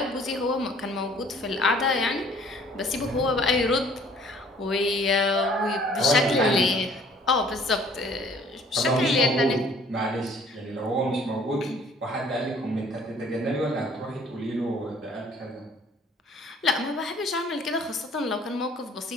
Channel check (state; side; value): normal; both; correlation 0.56